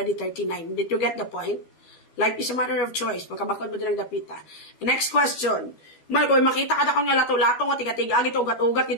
39. Did you get the point? Life is a matter of choice. Pagkabakod mo nilang dapita. Next question. Mal, kung makita ka na kang lato-lato nga, tiga-tiga, ito, ugat-ugat,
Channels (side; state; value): right; late; 12 ms